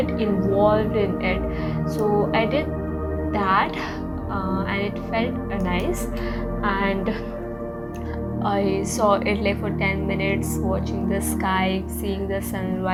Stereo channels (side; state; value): both; identical; correlation 1.00